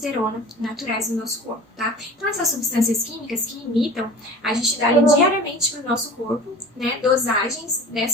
naturais do nosso corpo, tá? Então, essas substâncias químicas que imitam, a gente dá diariamente para o nosso corpo, né, dosagens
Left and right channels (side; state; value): both; normal; correlation 0.39